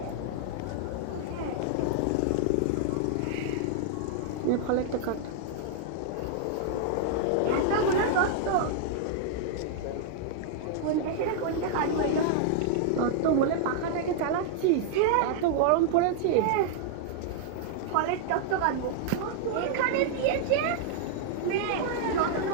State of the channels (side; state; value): both; different; correlation -0.01